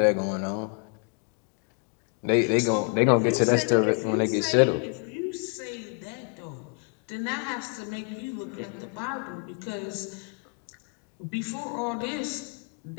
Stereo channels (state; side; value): quieter; right; 38.6 dB